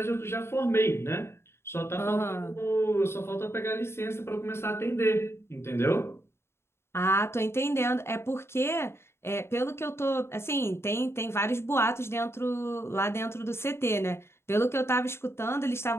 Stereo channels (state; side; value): late; right; 0.12 ms